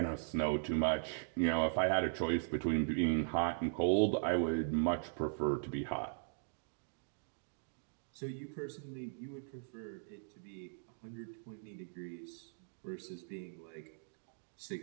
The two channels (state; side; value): silent; left; digital silence